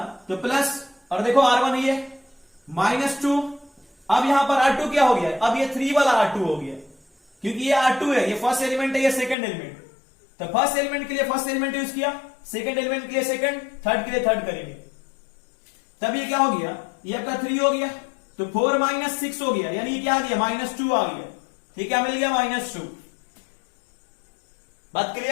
तो प्लस, और देखो R1 ये -2। अब यहां पर R2 क्या हो गया, अब ये 3 वाला R2 हो गया, क्योंकि ये R2 है, ये फर्स्ट एलिमेंट है, ये सेकंड एलिमेंट। तो फर्स्ट एलिमेंट के लिए फर्स्ट एलिमेंट यूज किया, सेकंड एलिमेंट के लिए सेकंड, थर्ड के लिए थर्ड करेंगे। तब ये क्या हो गया, ये आपका 3 हो गया, तो 4 - 6 हो गया, यानी ये क्या आ गया, -2 आ गया। ठीक, क्या मिल गया, -2। बात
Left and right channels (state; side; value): drops out; right; at 9.3 s